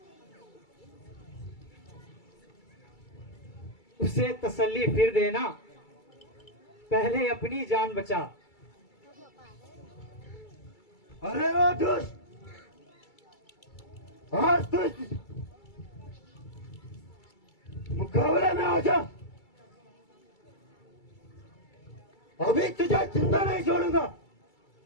उसे तसल्ली फिर देना, पहले अपनी जान बचा। अरे वो दुष्ट, आज तो इस मुकाबले में आ जा। अभी तुझे जिंदा नहीं छोड़ूंगा।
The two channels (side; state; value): right; late; 2.3 ms